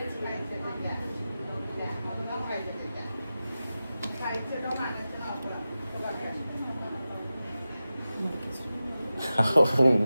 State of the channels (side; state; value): both; inverted; correlation -0.93